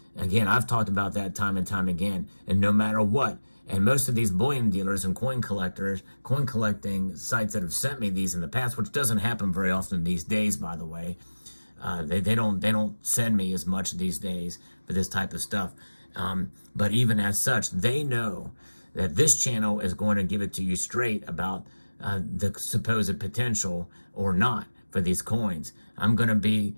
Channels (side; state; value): both; inverted; correlation -1.00